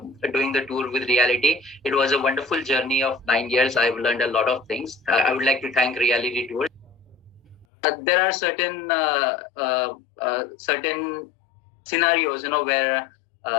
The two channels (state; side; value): drops out; right; at 7.7 s